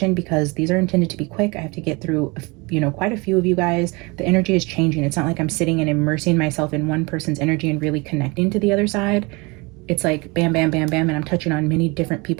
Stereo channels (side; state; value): left; quieter; 26.9 dB